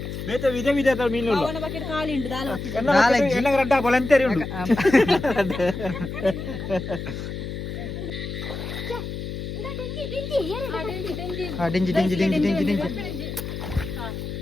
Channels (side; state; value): left; noise; hum, 6 dB below the sound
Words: ಬೇತೆ ವಿಧ ವಿಧ ಮೀನು ಎನ್ನ ರಡ್ಡ ಬಲಂತೇರಿ ಉಂಡು ಡೆಂಜಿ